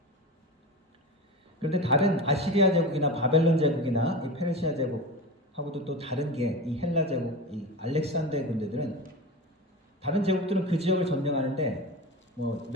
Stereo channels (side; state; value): both; normal; correlation 0.27